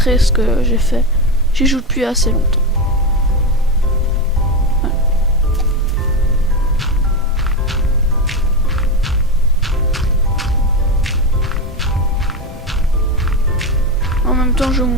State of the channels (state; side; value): normal; both; correlation 0.15